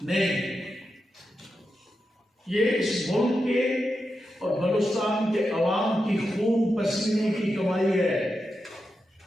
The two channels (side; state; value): both; normal; correlation 0.88